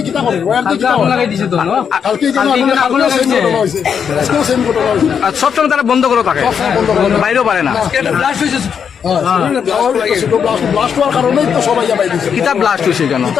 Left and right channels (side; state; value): right; quieter; 7.2 dB